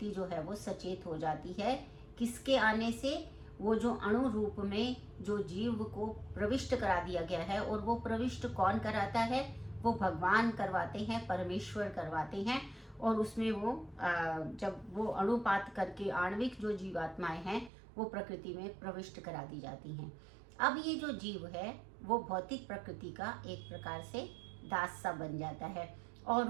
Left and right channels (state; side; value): drops out; left; at 17.7 s